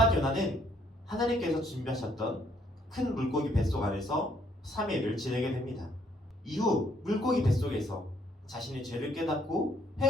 요나는 하나님께서 준비하셨던 큰 물고기 뱃속 안에서 3일을 지내게 됩니다. 이후 물고기 뱃속에서 자신의 죄를 깨닫고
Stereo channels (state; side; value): normal; both; correlation 0.67